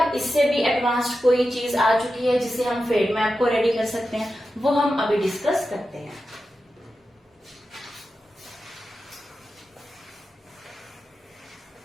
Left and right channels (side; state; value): both; normal; correlation 0.91